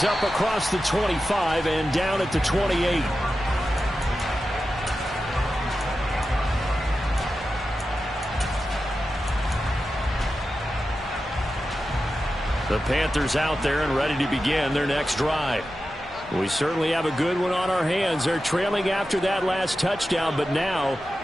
up across the 25 and down at the 28. The Panthers out there and ready to begin their next drive. We certainly have a good one on our hands. They're trailing after that last touchdown, but now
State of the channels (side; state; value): both; normal; correlation 0.92